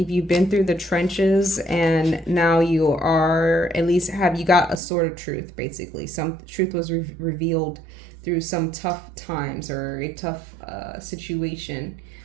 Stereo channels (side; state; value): left; drops out; at 4.8 s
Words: you've been through the trenches and now you are, at least you got a sword of truth, basically. Some truth was revealed through some tough times or a tough situation.